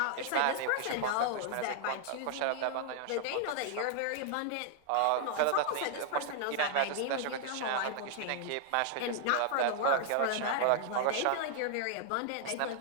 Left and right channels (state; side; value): different; both; correlation -0.01